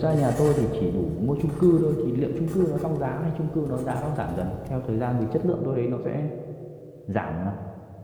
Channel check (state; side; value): identical; both; correlation 1.00